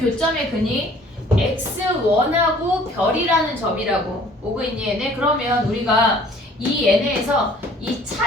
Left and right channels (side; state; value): both; normal; correlation 0.54